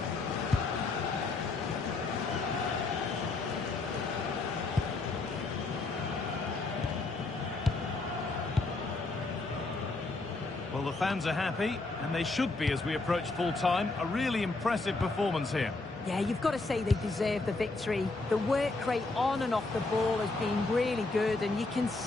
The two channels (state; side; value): quieter; right; 3.5 dB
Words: Well, the fans are happy, and they should be as we approach full-time. A really impressive performance here. Yeah, you've got to say they deserve the victory. The work rate on and off the ball has been really good, and you can